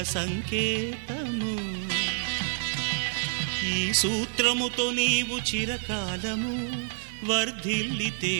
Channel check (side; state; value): left; silent; digital silence